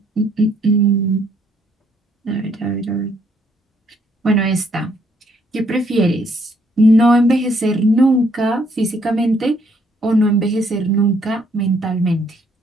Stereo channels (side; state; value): both; normal; correlation 0.69